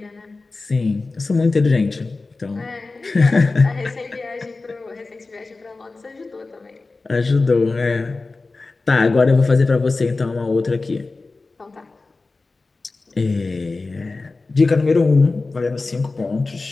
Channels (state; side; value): quieter; right; 3.6 dB